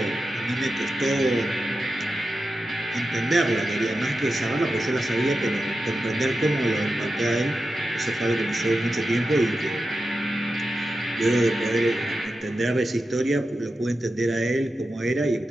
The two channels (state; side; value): normal; both; correlation 0.91